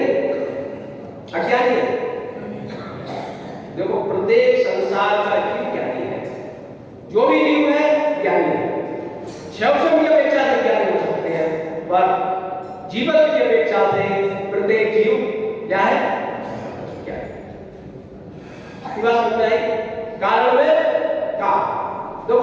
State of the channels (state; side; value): identical; both; correlation 1.00